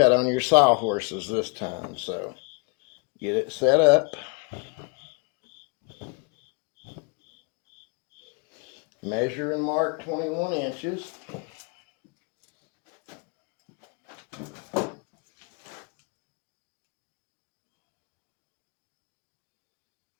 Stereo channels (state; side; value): quieter; right; 31.4 dB